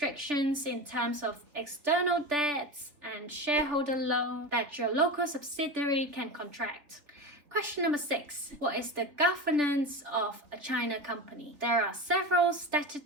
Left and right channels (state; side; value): late; left; 3.4 ms